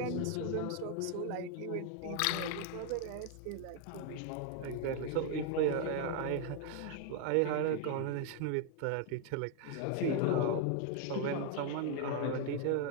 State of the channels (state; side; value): different; both; correlation 0.00